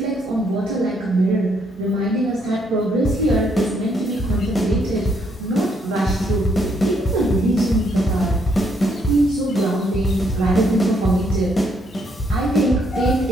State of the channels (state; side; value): normal; both; correlation 0.72